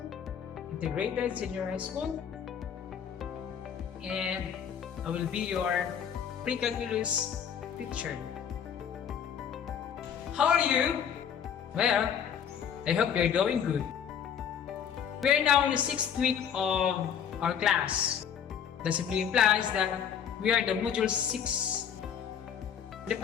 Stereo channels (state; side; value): quieter; right; 8.3 dB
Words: Integrated Senior High School, and I will be your pre-calculus teacher. How are you? Well, I hope you're doing good. We are now in the 6th week of our class. That simply implies that we are the module 6. The